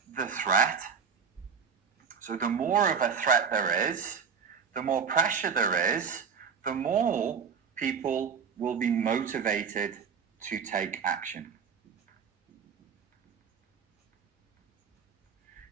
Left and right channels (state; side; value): quieter; left; 6.3 dB